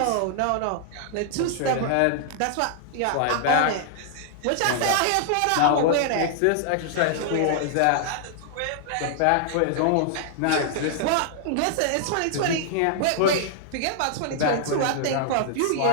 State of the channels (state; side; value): different; both; correlation -0.01